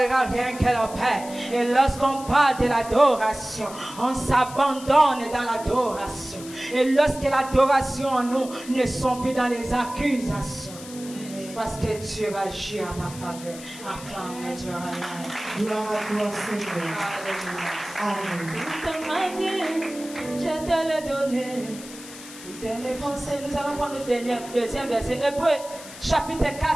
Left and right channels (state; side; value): noise; left; hiss, 15 dB below the sound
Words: rien que le Père. Et lorsqu'on parle de l'adoration, on s'abandonne dans l'adoration. Et lorsque l'adoration en nous ne sont plus dans les accusations, parce que Dieu va agir en ta faveur. Acclame Dieu. Gloire à toi, Seigneur. Amen. Toute ma vie, je te l'ai donné. Toutes mes pensées, nous allons prendre le deuxième verset. Hébreux, chapitre 4,